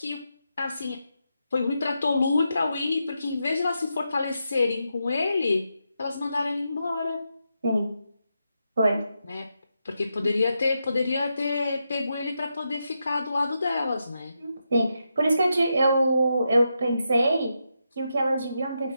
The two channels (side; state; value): both; inverted; correlation -0.85